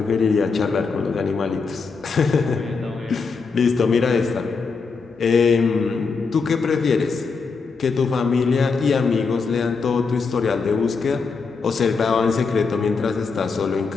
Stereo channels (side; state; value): right; quieter; 4.8 dB